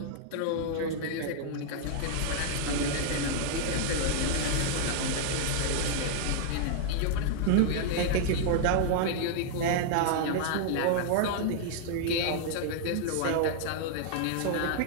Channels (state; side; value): different; both; correlation -0.01